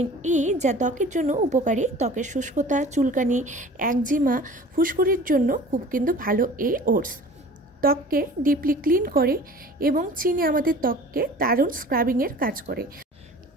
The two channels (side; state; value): both; normal; correlation 0.43